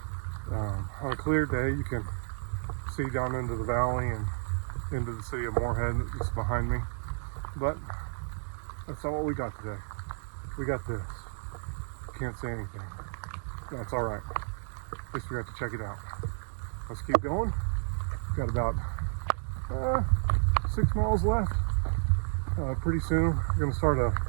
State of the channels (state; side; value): silent; left; digital silence